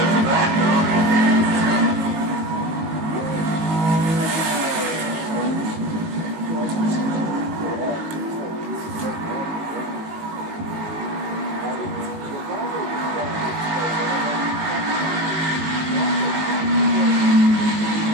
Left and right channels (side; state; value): left; late; 19 ms